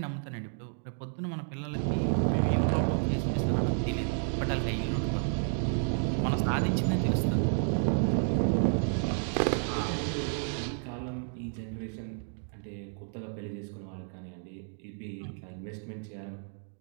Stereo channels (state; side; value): silent; left; 57 dB below the other